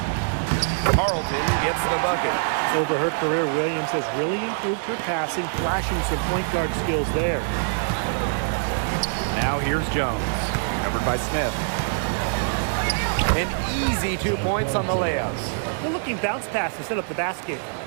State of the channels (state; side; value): silent; left; digital silence